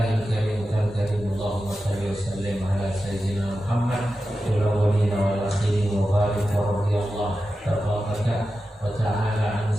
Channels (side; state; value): both; normal; correlation 0.92